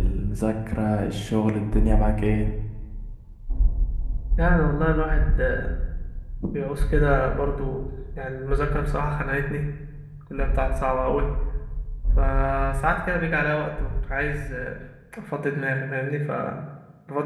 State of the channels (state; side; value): identical; both; correlation 1.00